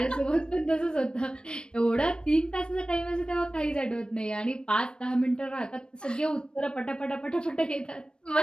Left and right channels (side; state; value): right; late; 0.053 ms